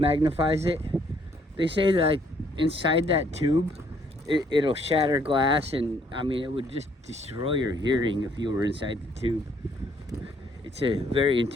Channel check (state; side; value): normal; both; correlation 0.66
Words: it. They say that like, inside that tube, it'll shatter glass, and I mean it would just destroy your hearing if you were inside the tube. It's a very